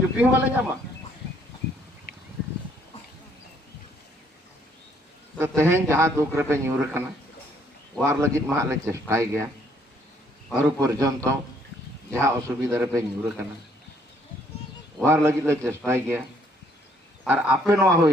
वाले ᱧᱟᱢ तो तेहें जहाँ दुख रे ᱧᱩᱨ कना वार लगी मा ले चेष्टाई गया और पर्यंत जहाँ असुविधा रे ᱧᱩᱨ कना वार लगी ले चेष्टाई गया और आपे नवा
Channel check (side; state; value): both; normal; correlation 0.66